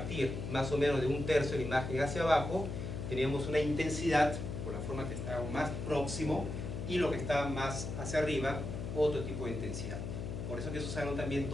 más o menos de 1/3 de la imagen hacia abajo, teníamos una intensidad, por la forma que estaba más próximo, y lo que estaba más hacia arriba, otro tipo de intensidad. Por eso que se usaron también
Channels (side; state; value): left; noise; hum, 5 dB below the sound